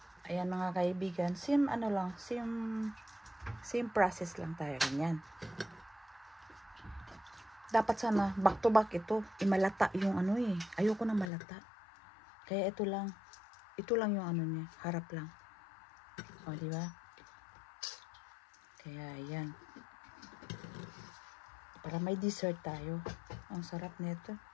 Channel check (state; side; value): drops out; right; at 11.3 s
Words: Ayan mga kaibigan. Same process lang tayo. Ganyan. dapat sana back to back ito. Malata yung ano eh. Ayoko na malata. Kaya ito lang yung ano niya, harap lang. O, di ba? Kaya ayan. Para may dessert tayo. Ang sarap nito.